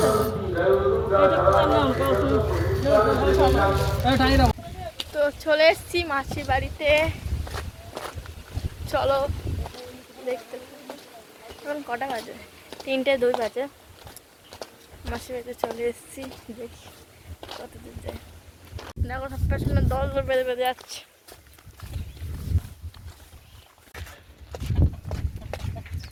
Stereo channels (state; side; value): identical; both; correlation 1.00